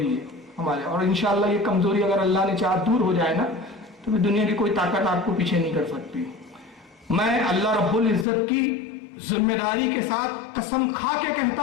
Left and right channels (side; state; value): right; drops out; at 8.2 s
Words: ہے ہمارے، اور انشاءاللہ یہ کمزوری اگر اللہ نے چاہا دور ہو جائے نا تو دنیا کی کوئی طاقت آپ کو پیچھے نہیں کر سکتی۔ میں اللہ رب العزت کی ذمہ داری کے ساتھ قسم کھا کے کہتا